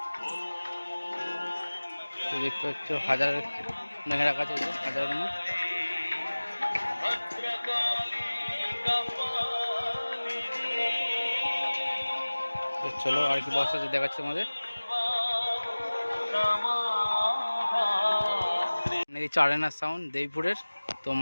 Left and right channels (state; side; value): inverted; both; correlation -1.00